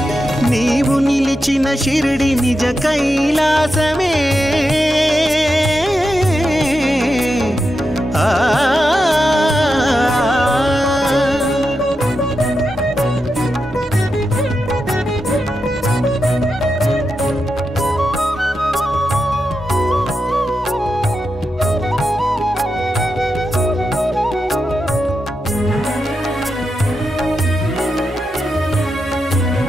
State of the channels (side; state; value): both; normal; correlation 0.87